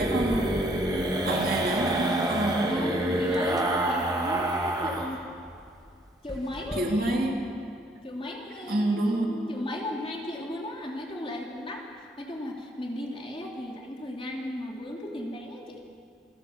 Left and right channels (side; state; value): both; normal; correlation 0.65